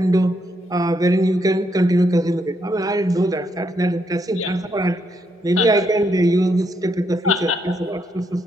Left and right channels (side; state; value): both; normal; correlation 0.77